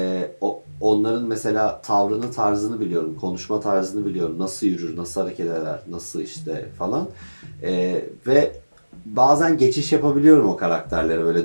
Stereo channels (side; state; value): both; inverted; correlation -1.00